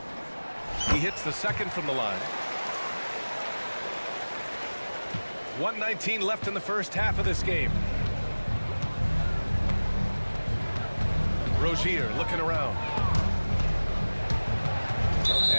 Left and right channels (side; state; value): both; inverted; correlation -1.00